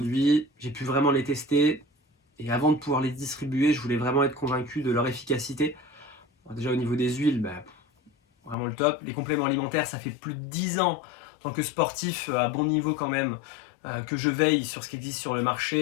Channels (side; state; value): right; drops out; at 8.6 s